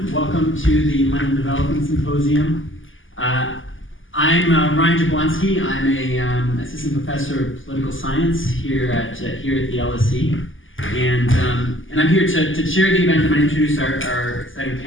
Welcome to the London Development Symposium. I'm Ryan Jablonski. I'm a assistant professor of political science here at the LSE, and I'm here to chair the event. I'm going to introduce our exciting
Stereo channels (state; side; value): late; right; 0.58 ms